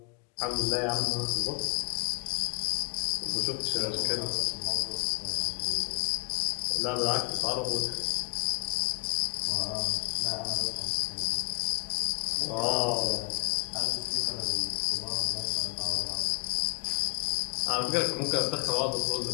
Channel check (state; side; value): quieter; right; 35.3 dB